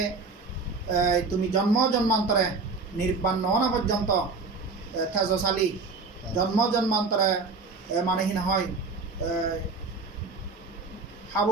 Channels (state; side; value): quieter; left; 4.1 dB